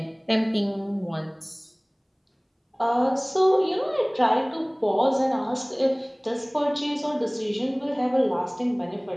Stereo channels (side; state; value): both; identical; correlation 1.00